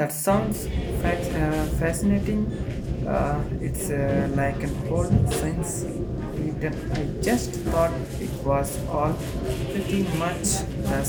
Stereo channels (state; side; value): identical; both; correlation 1.00